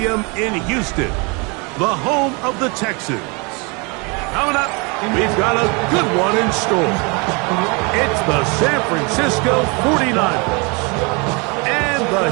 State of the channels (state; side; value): quieter; left; 30.5 dB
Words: in Houston, the home of the Texans. Coming up, we've got a good one in store. It's the San Francisco 49ers and the